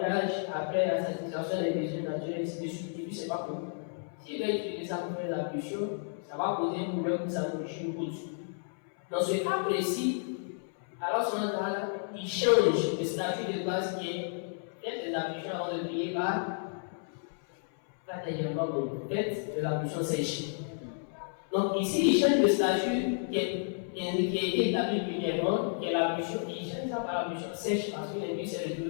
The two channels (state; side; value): silent; right; 57 dB below the other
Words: après la satisfaction des besoins naturels, ainsi de suite, et puis c'est pas bon. S'il va utiliser ça pour faire l'ablution, ça va poser un problème pour sa nourriture ou autre. Dans ce cas précis, alors il change le statut de base qui est faites des ablutions avant de prier par faites de l'ablution sèche. Donc ici, il change le statut qui a été établi premièrement, qui est l'ablution, il change ça par l'ablution sèche parce que l'individu s'est